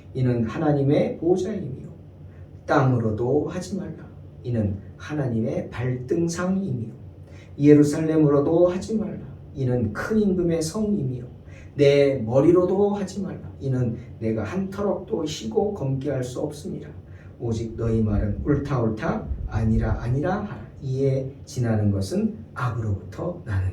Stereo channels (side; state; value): both; identical; correlation 1.00